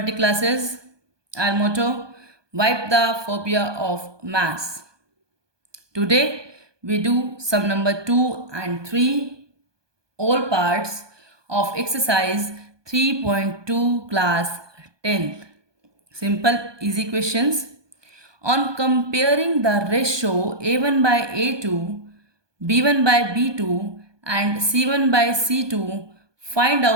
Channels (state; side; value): late; left; 1.2 ms